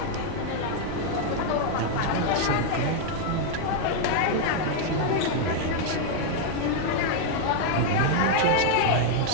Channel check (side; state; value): both; different; correlation 0.00